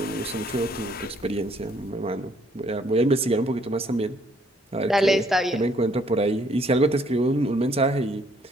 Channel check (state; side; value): normal; both; correlation 0.65